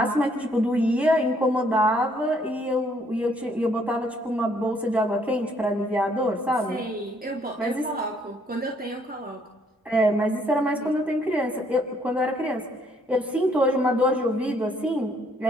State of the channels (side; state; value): both; normal; correlation 0.67